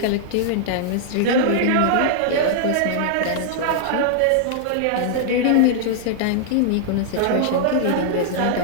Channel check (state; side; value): different; both; correlation -0.01